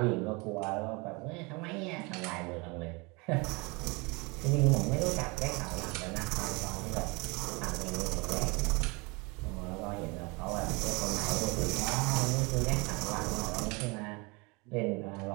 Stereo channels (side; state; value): left; quieter; 27.8 dB